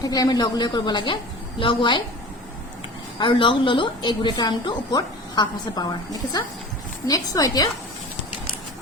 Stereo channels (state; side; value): normal; both; correlation 0.37